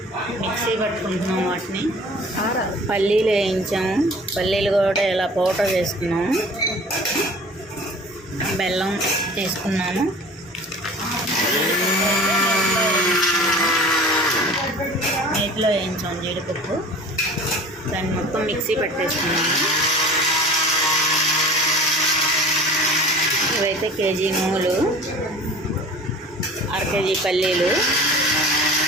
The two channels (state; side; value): normal; both; correlation 0.43